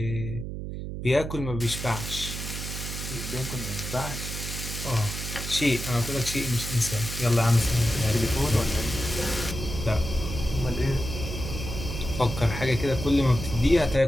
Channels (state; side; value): noise; right; hum, 6 dB below the sound